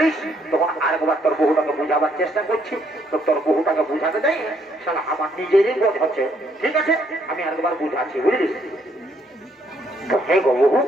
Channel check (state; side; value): normal; both; correlation 0.70